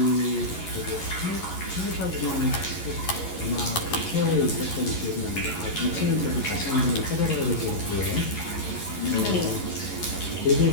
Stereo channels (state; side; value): late; right; 11 ms